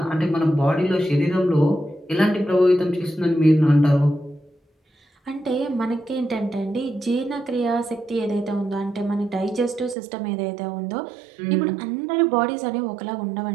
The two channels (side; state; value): left; drops out; at 10.0 s